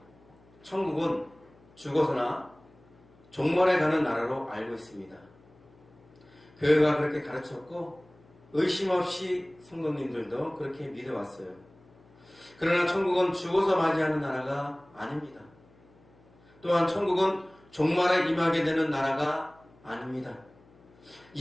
천국은 죽어서나 종말에 가는 나라로 알고 있습니다. 교회가 그렇게 가르쳤고 의심 없이 성도님들도 그렇게 믿어왔어요. 그러나 천국은 죽어서 맞이하는 나라가 아닙니다. 또한 천국은 종말에 임하게 되는 나라가 아닙니다.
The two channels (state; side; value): noise; left; hum, 28 dB below the sound